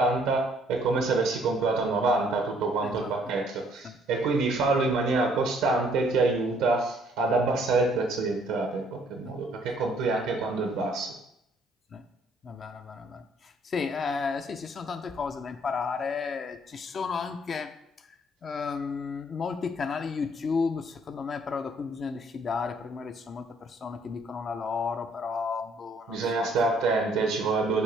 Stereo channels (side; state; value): both; normal; correlation 0.63